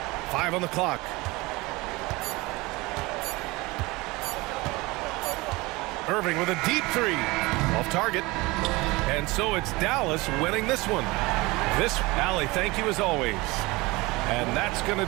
Five on the clock. Irving with a deep three. Off target. And so it's Dallas winning this one. Allie, thank you as always. And that's going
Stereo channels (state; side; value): quieter; left; 22.6 dB